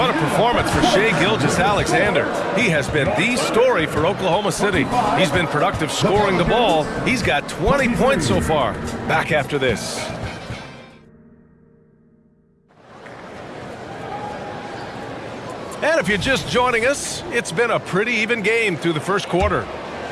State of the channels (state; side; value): identical; both; correlation 1.00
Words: a performance for Shai Gilgeous-Alexander. He has been the story for Oklahoma City. He's been productive scoring the ball. He's got 20 points so far. Back after this. And if you're just joining us, it's been a pretty even game through the first quarter.